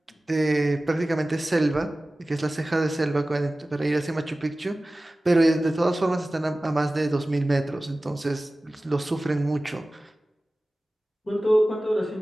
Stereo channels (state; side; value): normal; both; correlation 0.97